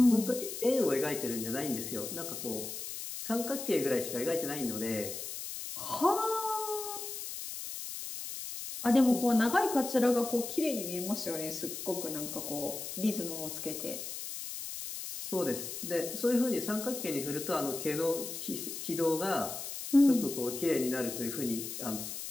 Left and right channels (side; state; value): left; noise; hiss, 7 dB below the sound